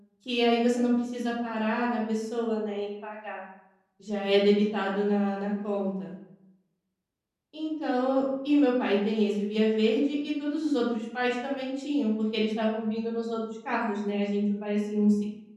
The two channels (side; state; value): both; identical; correlation 1.00